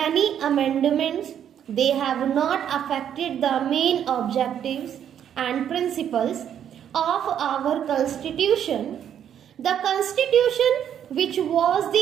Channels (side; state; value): left; quieter; 9.4 dB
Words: amendments, they have not affected the main objectives and principles of our Constitution. The Constitution, which was